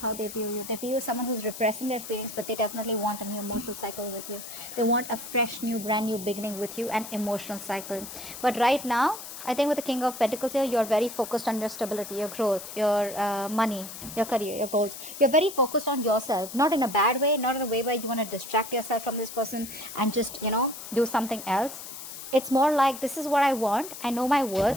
how they view you. They view you as someone who's repressing their feelings, but they definitely want a new emotional cycle with you. They want a fresh, new, brand new beginning with you, an emotional cycle. But right now, I think with the King of Pentacles here, you're very focused on your stability, your growth, your money, your career, your goals. You're very focused on yourself, not in a bad way, not in a way where you want to distract yourself from this person and just, do something else. It's more like, this is what I want. I know my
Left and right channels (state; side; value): noise; left; hiss, 11 dB below the sound